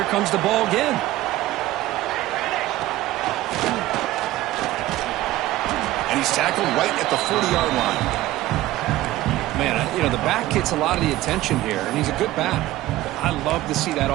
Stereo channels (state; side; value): quieter; left; 16.1 dB